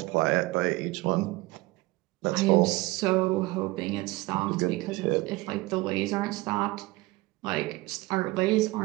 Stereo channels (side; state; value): left; quieter; 21.1 dB